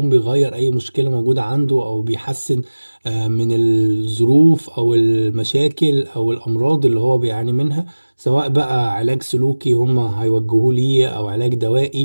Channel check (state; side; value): inverted; both; correlation -1.00